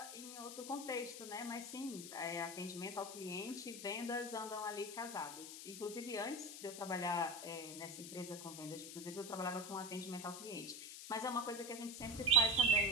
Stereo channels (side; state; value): left; noise; hiss, 10 dB below the sound